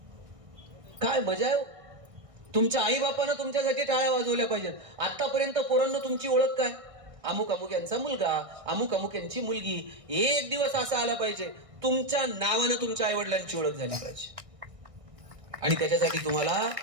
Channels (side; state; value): left; late; 1.6 ms